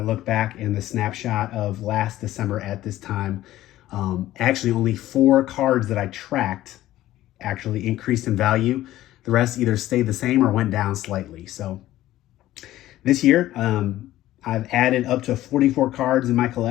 look back in the snapshot of last December at this time, actually only 4 cards that I tracked actually increased in value. The rest either stayed the same or went down slightly. So this year, I've added up to 44 cards in my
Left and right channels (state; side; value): quieter; right; 14.7 dB